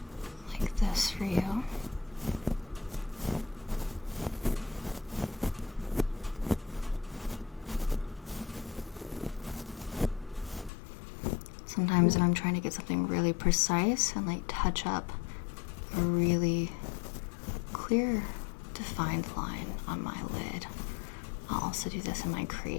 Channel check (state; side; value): drops out; right; at 10.7 s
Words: this for you. Sometimes when I'm trying to get something really precise and like touch up a really clear, defined line on my lid, I'll also do this in my